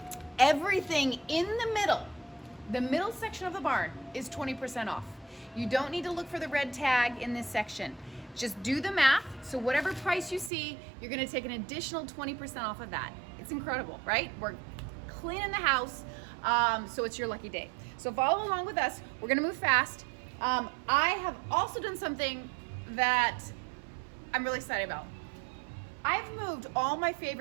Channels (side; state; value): left; drops out; at 10.5 s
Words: Everything in the middle section of the barn is 20% off. You don't need to look for the red tag in this section. Just do the math. So whatever price you see, you're gonna take an additional 20% off of that. It's incredible, right? We're cleaning the house, so it's your lucky day. So follow along with us. We're gonna move fast. I have also done something that I'm really excited about. I've moved all my